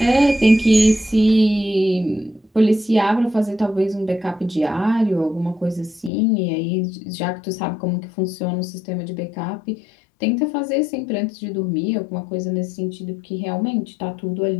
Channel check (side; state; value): right; drops out; at 6.1 s